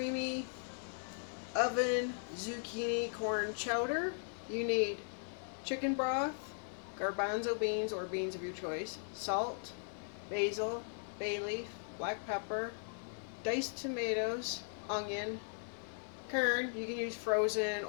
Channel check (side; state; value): right; silent; digital silence